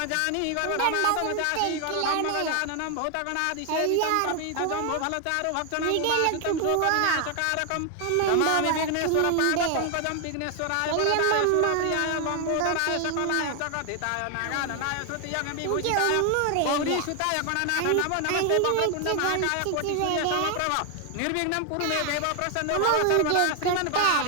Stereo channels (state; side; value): different; both; correlation 0.01